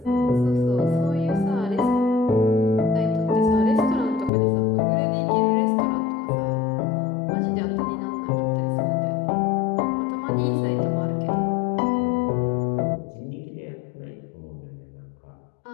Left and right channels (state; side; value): drops out; right; at 4.3 s